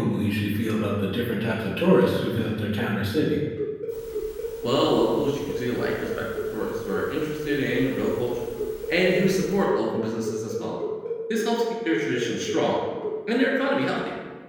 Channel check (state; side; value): identical; both; correlation 1.00